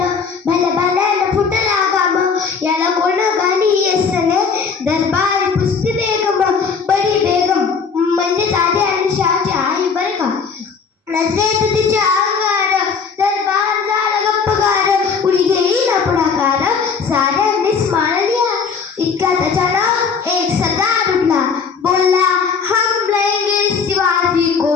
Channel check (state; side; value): quieter; right; 5.7 dB